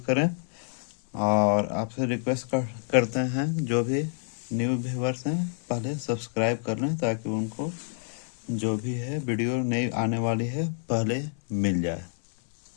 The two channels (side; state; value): right; silent; 60 dB below the other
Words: करें और आपसे रिक्वेस्ट करते हैं जो भी न्यू व्यूवर्स हैं पहले सब्सक्राइब कर लें ताकि उनको जो भी है वीडियो नई आने वाली है पहले मिल जाए।